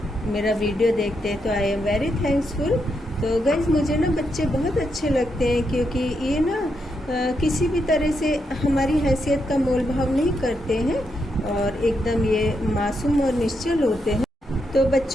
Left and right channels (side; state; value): both; normal; correlation 0.81